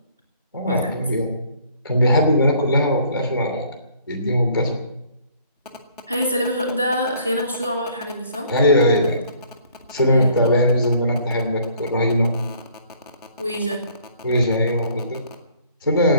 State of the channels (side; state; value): both; inverted; correlation -0.59